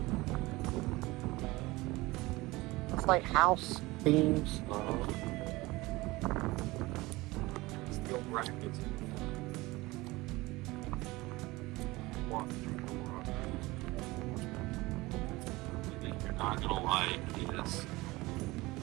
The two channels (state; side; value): quieter; left; 21.0 dB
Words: It's like house beams. Steel brackets. One thing you're not gonna like is